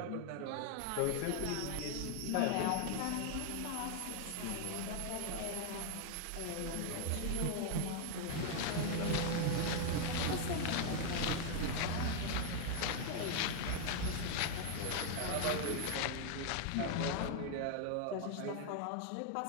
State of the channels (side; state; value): both; different; correlation 0.00